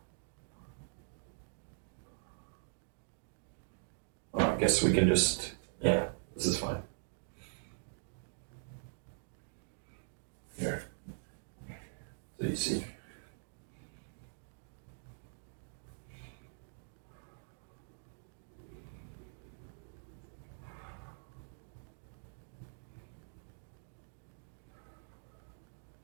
I guess we can just, yeah, this is fine. Here. So you see.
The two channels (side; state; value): left; silent; digital silence